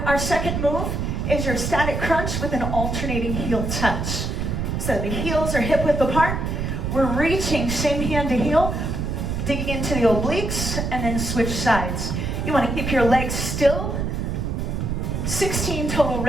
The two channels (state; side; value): noise; right; rumble, 2 dB below the sound